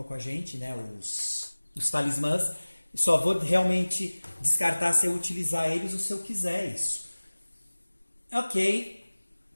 com a gente, né? Os talismãs. Só vou realmente descartar se eu utilizar eles ou se eu quiser isso. Ok.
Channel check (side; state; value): both; inverted; correlation -1.00